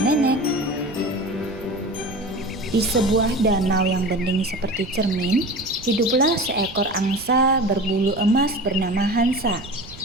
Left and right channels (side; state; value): right; noise; rumble, 17 dB below the sound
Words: nenek. Di sebuah danau yang bening seperti cermin, hiduplah seekor angsa berbulu emas bernama Hansa.